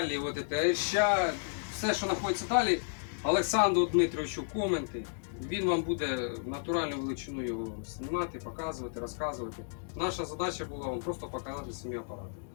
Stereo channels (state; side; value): silent; right; digital silence